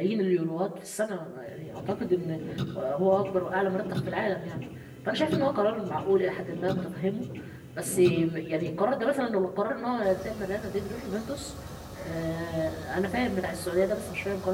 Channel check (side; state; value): both; identical; correlation 1.00